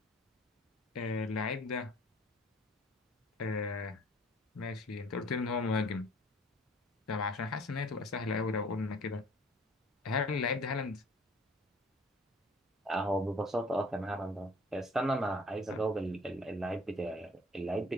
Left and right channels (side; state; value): both; normal; correlation 0.52